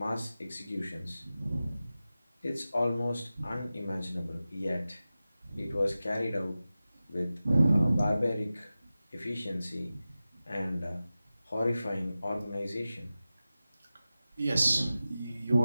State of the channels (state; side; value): inverted; both; correlation -0.95